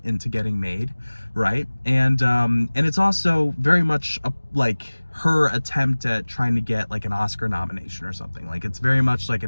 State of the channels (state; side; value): inverted; both; correlation -1.00